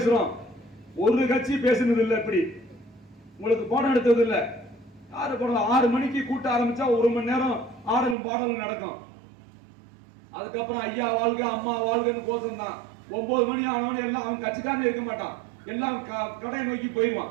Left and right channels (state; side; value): drops out; left; at 8.2 s